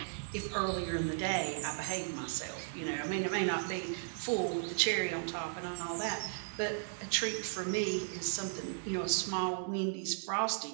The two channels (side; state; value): left; silent; digital silence